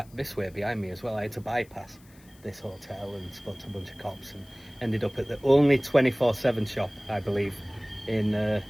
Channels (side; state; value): left; noise; hiss, 27 dB below the sound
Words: this way behind me as well. I had to bypass this hotel and spoke to a bunch of cops and ended up at the only 24/7 shop, I believe, in